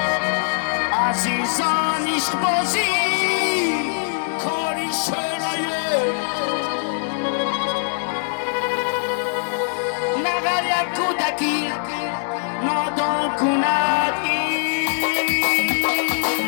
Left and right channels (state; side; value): silent; right; digital silence